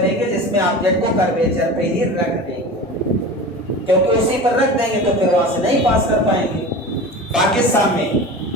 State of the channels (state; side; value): normal; both; correlation 0.32